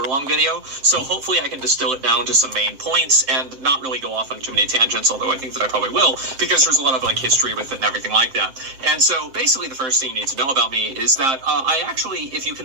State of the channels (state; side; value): late; left; 7.5 ms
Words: long video, so hopefully I can distill it down to some main points and not really go off on too many tangents, although I think that I probably will, because there's a lot of like history with it and everything like that. And so basically the first thing you need to know about me is that I actually, if you